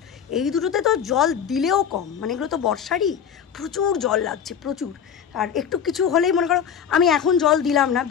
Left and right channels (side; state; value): right; quieter; 8.0 dB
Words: এই দুটোতে তো জল দিলেও কম, মানে এগুলো তো বর্ষারই, প্রচুর জল লাগছে প্রচুর। আর একটু কিছু হলেই মনে করো আমি এখন জল দিলাম না,